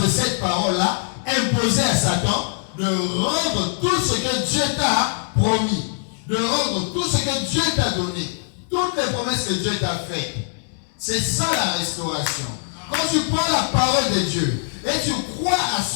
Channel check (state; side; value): silent; right; 64 dB below the other